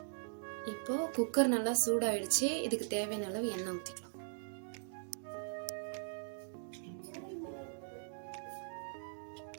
இப்போ குக்கர் நல்லா சூடாயிடுச்சு. இதுக்கு தேவையான அளவு எண்ணெய் ஊற்றிக்கலாம்.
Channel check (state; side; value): silent; left; digital silence